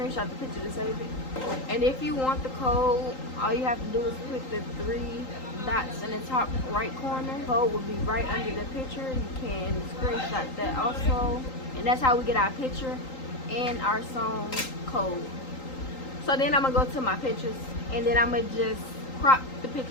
the picture to save it. And if you want the code, all you have to do is click the 3 dots in the top right corner. The code will be right under the picture. You can screenshot that also, and that's how we get our picture and our song code. So then I'm gonna go to my pictures, and then I'm gonna just crop the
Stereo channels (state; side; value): late; right; 3.8 ms